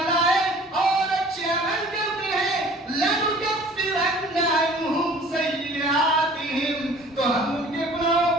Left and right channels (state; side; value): normal; both; correlation 0.49